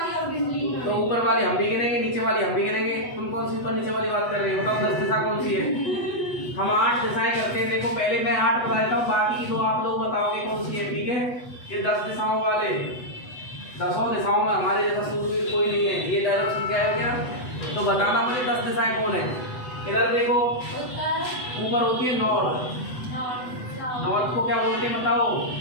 और गिनली। तो ऊपर वाली हम भी गिनेंगे, नीचे वाली हम भी गिनेंगे। तुम कौन सी ऊपर नीचे वाली बात कर रहे हो? बताओ 10 दिशा कौन सी है? हम 8 दिशाएं करते हैं। देखो पहले मैं 8 बता देता हूँ, बाकी की 2 आप लोग बताओगे कौन सी है, ठीक है। ये 10 दिशाओं वाले, 10 दिशाओं में हमारे जैसा सूरवीर कोई नहीं है। ये डायरेक्शन क्या है क्या? तो बताना मुझे 10 दिशाएं कौन है। इधर देखो, ऊपर होती है नॉर्थ। नॉर्थ को क्या बोलते हैं बताओ?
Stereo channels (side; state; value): right; late; 8.1 ms